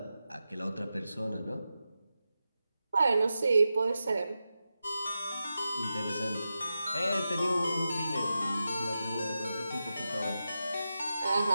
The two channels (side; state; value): both; inverted; correlation -0.91